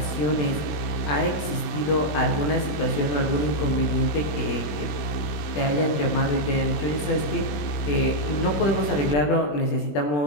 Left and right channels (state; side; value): late; right; 20 ms